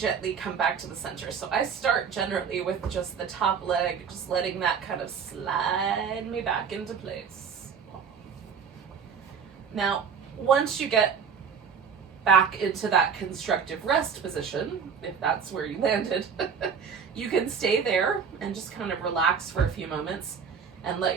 come back to the center. So I start generally with just the top leg, just letting that kind of slide me back into place. Now, once you get back into that constructive rest position, if that's where you landed, you can stay there and just kind of relax for a few moments and let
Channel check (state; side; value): quieter; left; 6.6 dB